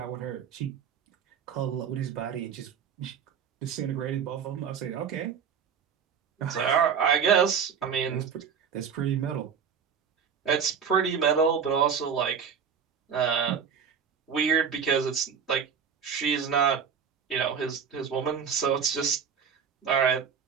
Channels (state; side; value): quieter; left; 7.1 dB